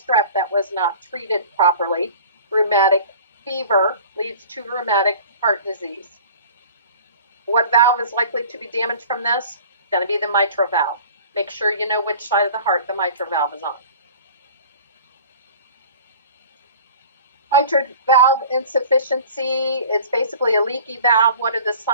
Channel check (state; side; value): inverted; both; correlation -0.44